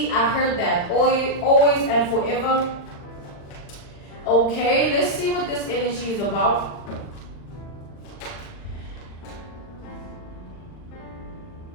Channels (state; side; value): late; right; 40 ms